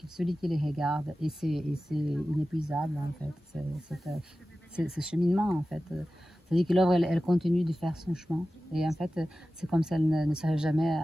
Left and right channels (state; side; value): normal; both; correlation 0.95